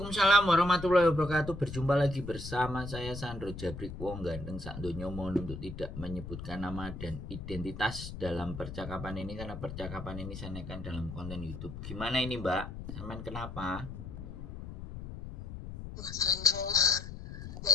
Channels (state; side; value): noise; left; rumble, 9 dB below the sound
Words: warahmatullahi wabarakatuh. Berjumpa lagi bersama saya Sandro Jabrik Wong Ganteng Sakdonya. Mohon untuk tidak menyebutkan nama dan identitas dalam percakapan ini karena percakapan ini saya naikkan dalam konten YouTube. Gimana ini, Mbak? Sampean kenapa? Mas Andro,